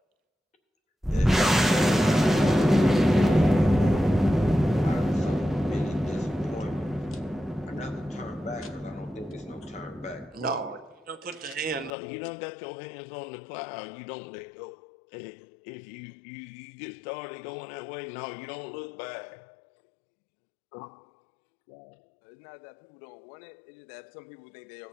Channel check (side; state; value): right; drops out; at 11.9 s